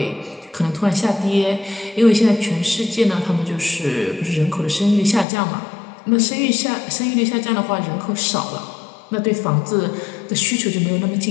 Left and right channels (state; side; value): drops out; right; at 5.2 s